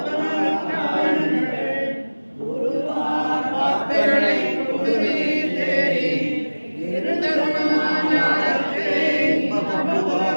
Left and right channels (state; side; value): inverted; both; correlation -1.00